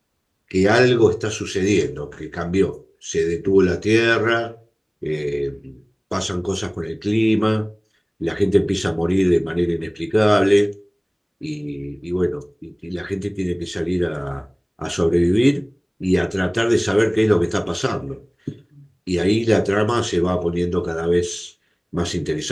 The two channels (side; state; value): both; identical; correlation 1.00